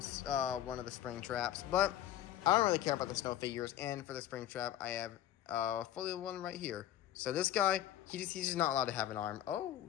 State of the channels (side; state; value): right; quieter; 12.2 dB